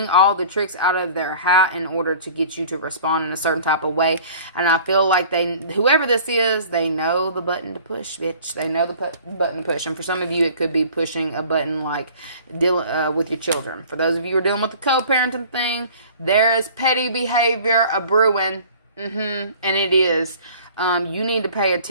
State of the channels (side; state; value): both; inverted; correlation -0.47